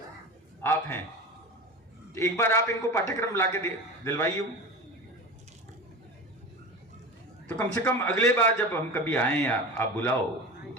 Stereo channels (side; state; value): both; normal; correlation 0.29